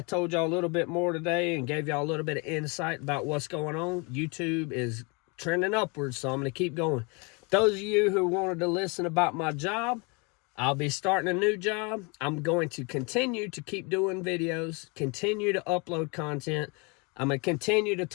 told y'all a little bit more today and gave y'all a little bit of insight about what's going on. YouTube is trending upwards, so I'm going to keep going. Those of you who wanted to listen about my job, I'll be starting a new job. I'm going to continue to keep doing videos, continue to upload content. I'm gonna continue to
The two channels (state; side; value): quieter; right; 31.0 dB